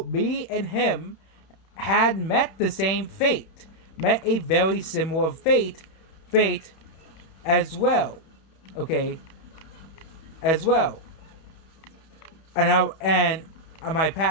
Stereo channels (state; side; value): late; right; 31 ms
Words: me and him had met the same fate, met a very similar fate as well. Okay, as well. And my